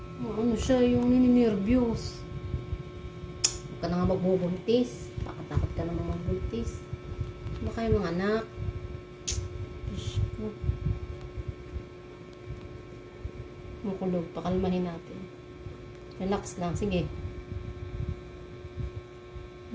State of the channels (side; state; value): both; identical; correlation 1.00